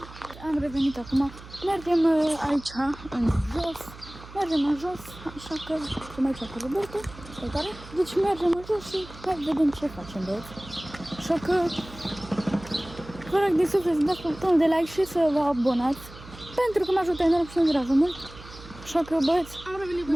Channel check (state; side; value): noise; right; hum, 17 dB below the sound